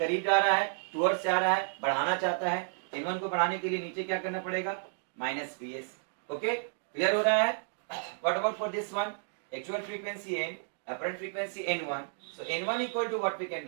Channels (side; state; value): left; silent; digital silence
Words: जा रहा है, टुवर्ड्स जा रहा है, बढ़ाना चाहता है, n1 को बढ़ाने के लिए नीचे क्या करना पड़ेगा, माइनस vs। ओके, क्लियर हो रहा है। What about for this one, actual frequency n, apparent frequency n1, so n1 equal to what we can